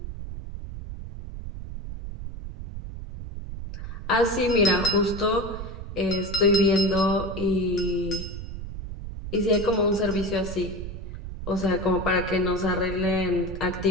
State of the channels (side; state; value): right; noise; rumble, 9 dB below the sound